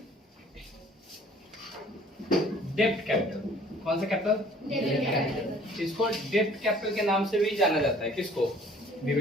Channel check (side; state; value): both; normal; correlation 0.54